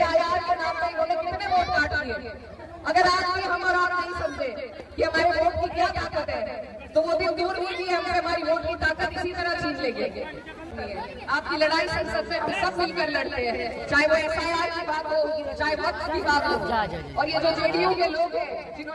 के नाम पर इन्होंने कितने वोट काट लिए। अगर आज भी हम और आप नहीं समझे कि हमारे वोट की क्या ताकत है, तो वो दिन दूर नहीं है हमें हमारी वोट की ताकत इसी तरह छीन लेंगे। आपकी लड़ाई संसद में हम सब मिलकर लड़ते हैं, चाहे वो SIR की बात हो, चाहे वक्त की बात हो। और ये जो जेडीयू के लोग हैं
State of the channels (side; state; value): both; identical; correlation 1.00